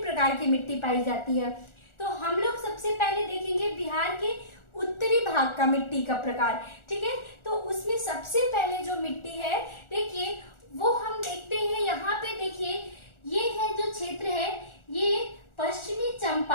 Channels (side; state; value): right; late; 1.4 ms